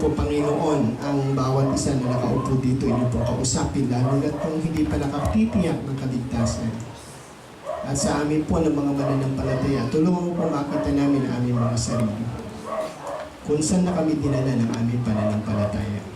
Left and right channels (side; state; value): both; identical; correlation 1.00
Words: Panginoon, ang bawat isa na nakaupo dito, inyo po kausapin, lalo na kung hindi pa nakatitiyak ng kaligtasan. At sa amin po ng mga mananampalataya, tulungan mo po makita namin ang aming mga sarili. Kung saan na kami dinala ng aming pananampalataya.